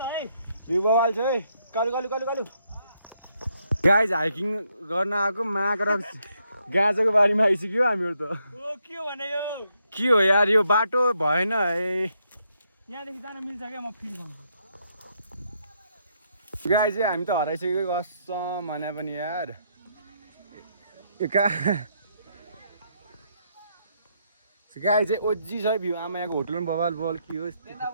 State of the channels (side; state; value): both; inverted; correlation -0.76